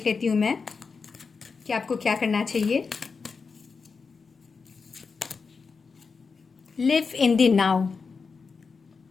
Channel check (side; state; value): right; quieter; 5.0 dB